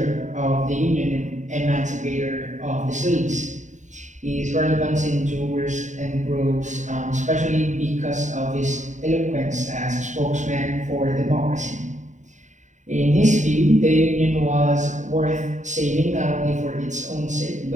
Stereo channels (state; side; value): late; left; 0.35 ms